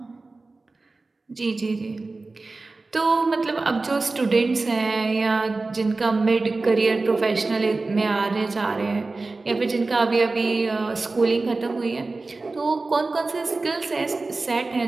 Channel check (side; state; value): left; quieter; 3.5 dB